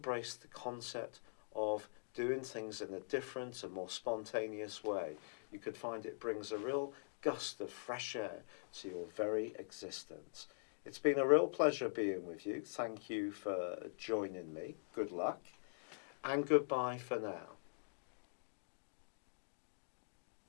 the concept of doing things in a different and more spontaneous way. You could find it brings a real gust of fresh air to your very existence. It's been a real pleasure being with you. Thank you for joining me. Good luck. And goodbye for now.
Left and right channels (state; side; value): silent; right; digital silence